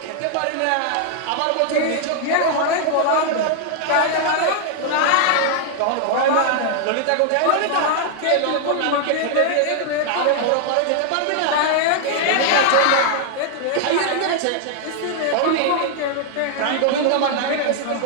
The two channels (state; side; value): different; both; correlation 0.00